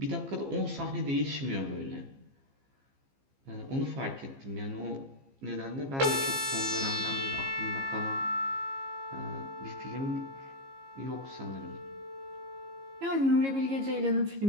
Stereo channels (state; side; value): late; left; 15 ms